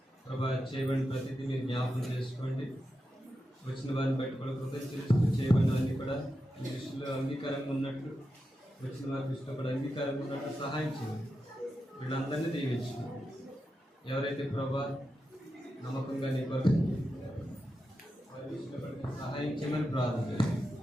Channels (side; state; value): both; normal; correlation 0.89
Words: ప్రభా చేయబడిన ప్రతిదీ మీరు జ్ఞాపకం చేసుకోండి. వచ్చిన వారిని బట్టి కూడా కృతజ్ఞత చేయబడినవన్నీ కూడా మీ దృష్టిలో అంగీకారంగా ఉన్నట్లు, వచ్చిన వారి దృష్టిలో కూడా అంగీకారంగా ఉన్నట్లు సహాయం చేయండి. వీళ్ళందరినీ దీవించండి. ఎవరైతే ప్రభా నమ్మకంగా నీ కొరకు వారి దృష్టిలో కూడా సహాయం చేయమని ప్రార్థన చేయండి.